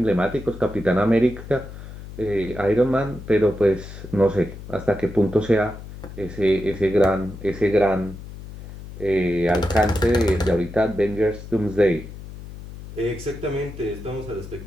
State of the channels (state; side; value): noise; left; hum, 13 dB below the sound